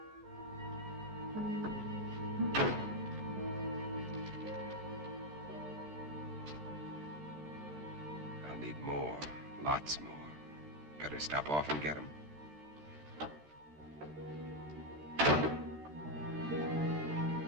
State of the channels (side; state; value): left; late; 14 ms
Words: I'll need more, lots more. Better stop off and get them.